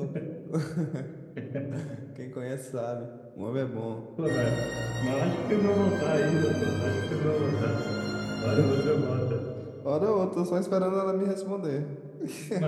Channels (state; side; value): identical; both; correlation 1.00